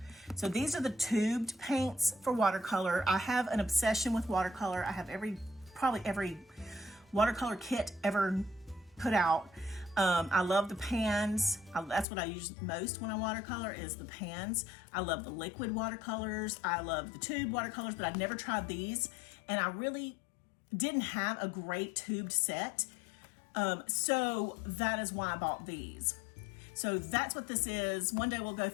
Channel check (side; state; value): right; drops out; at 12.1 s